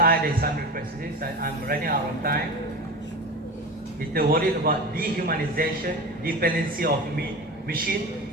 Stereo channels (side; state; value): both; normal; correlation 0.29